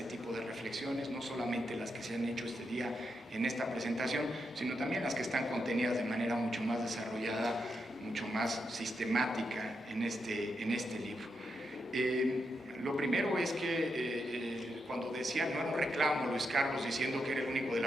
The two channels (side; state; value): both; normal; correlation 0.83